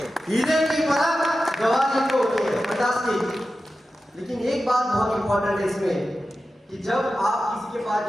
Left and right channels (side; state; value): both; normal; correlation 0.93